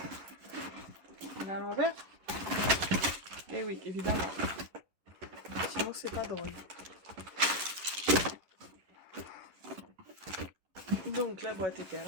On est à l'envers. Eh oui, évidemment. Sinon, c'est pas drôle. Donc, la boîte était à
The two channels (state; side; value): late; left; 11 ms